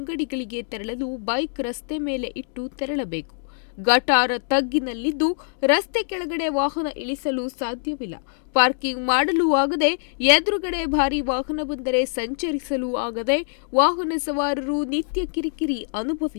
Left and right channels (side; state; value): right; silent; digital silence